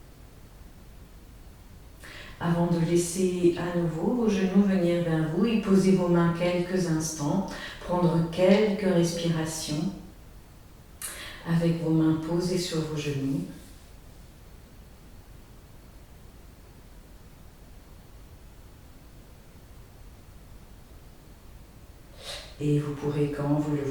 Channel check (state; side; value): identical; both; correlation 1.00